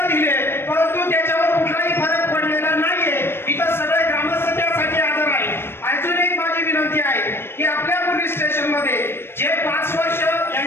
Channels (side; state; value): right; late; 0.11 ms